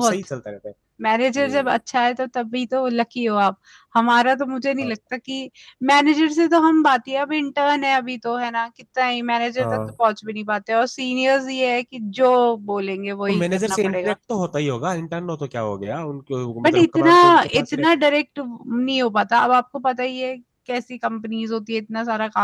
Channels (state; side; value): identical; both; correlation 1.00